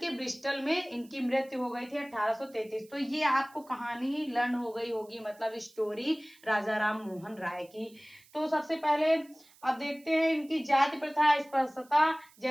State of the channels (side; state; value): right; noise; hiss, 27 dB below the sound